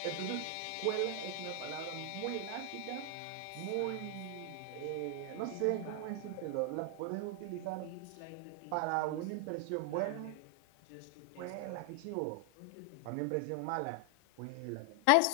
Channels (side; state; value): both; different; correlation 0.00